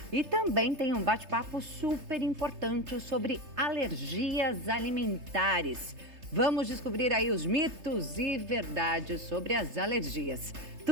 E também tem um bate-papo super importante sobre alergias alimentares. Vamos descobrir aí os mitos e verdades sobre as alergias.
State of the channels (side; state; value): left; late; 3.3 ms